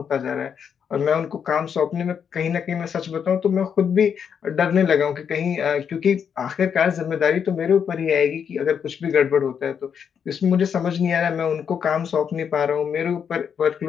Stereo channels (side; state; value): right; quieter; 7.4 dB